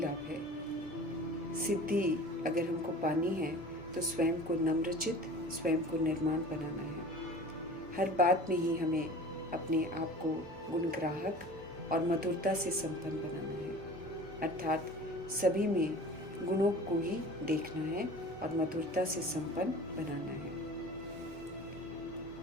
सिद्धि अगर हमको पानी है तो स्वयं को नम्रचित, स्वयं को निर्माण बनाना है। हर बात में ही हमें अपने आप को गुणग्राहक और मधुरता से संपन्न बनाना है, अर्थात सभी में गुणों को ही देखना है और मधुरता से संपन्न बनाना है।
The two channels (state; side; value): normal; both; correlation 0.41